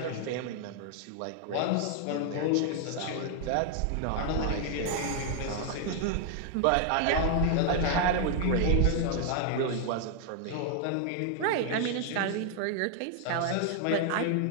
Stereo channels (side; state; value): both; different; correlation 0.00